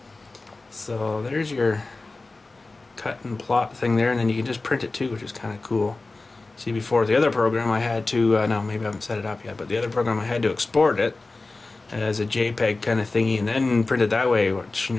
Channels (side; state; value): right; quieter; 3.4 dB